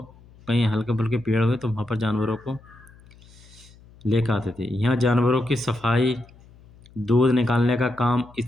कहीं हल्के फुल्के पेड़ हुए तो वहाँ पर जानवरों को लेकर आते थे। यहाँ जानवरों की सफाई, दूध निकालने का काम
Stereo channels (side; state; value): left; noise; hum, 25 dB below the sound